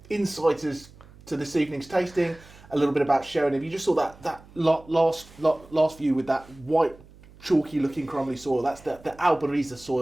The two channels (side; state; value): right; noise; hum, 23 dB below the sound